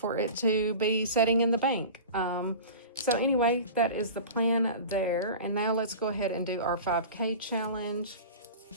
it to be sitting in the bank. So anyway, that is the plan there. And now let's go ahead and do our 5K challenge.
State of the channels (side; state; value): both; inverted; correlation -0.35